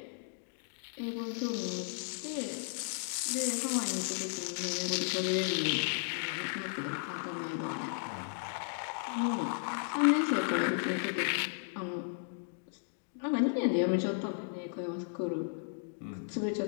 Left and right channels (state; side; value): silent; right; digital silence